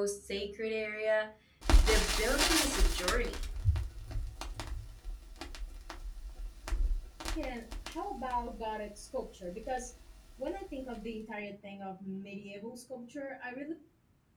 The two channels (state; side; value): identical; both; correlation 1.00